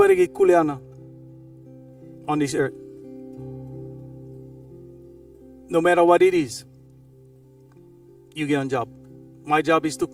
get kuleana on this earth. No matter what it is, you get a job. My job is to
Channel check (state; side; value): identical; both; correlation 1.00